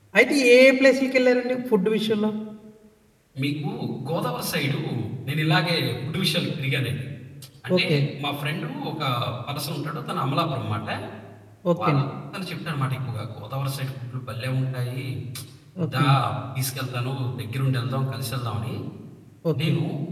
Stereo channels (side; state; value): both; identical; correlation 1.00